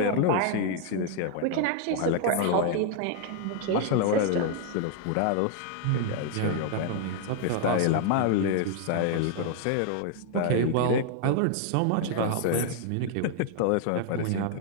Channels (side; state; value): both; different; correlation 0.00